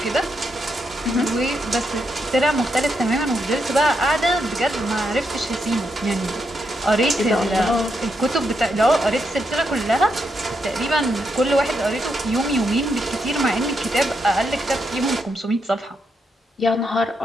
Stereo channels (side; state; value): both; normal; correlation 0.81